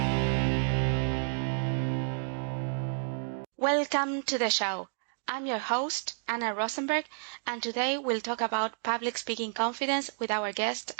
Welcome to the show. I'm your host, Anna Rosenberg, and today we'll talk about public speaking confidence with our guest,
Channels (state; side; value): silent; left; digital silence